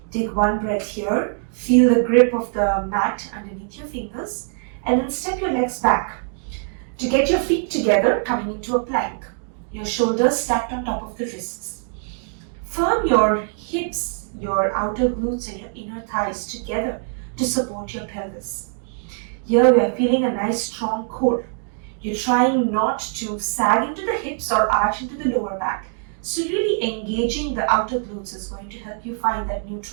Take one breath here. Feel the grip of the mat underneath your fingers. And then step your legs back. To get your feet together, coming into a plank. Your shoulders stacked on top of the wrists. Firm your hips, your outer glutes and your inner thighs together to support your pelvis. Here we are feeling a nice strong core. You're trying not to sag into the hips or arch into the lower back. So really engaging the outer glutes is going to help you find that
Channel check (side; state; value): left; silent; 56 dB below the other